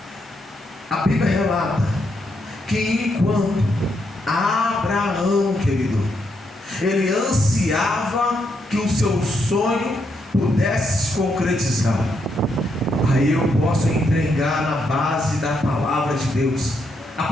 A Bíblia relata que enquanto Abraão, querido, ele ansiava que o seu sonho pudesse se concretizar. Aí eu posso entregar na base da palavra de Deus a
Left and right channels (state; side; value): normal; both; correlation 0.78